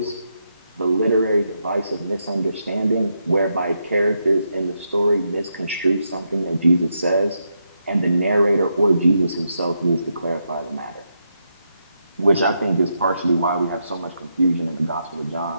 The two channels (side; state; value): both; inverted; correlation -0.82